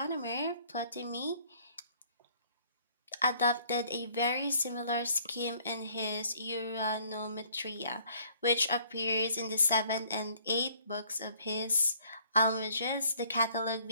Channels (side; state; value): both; inverted; correlation -0.60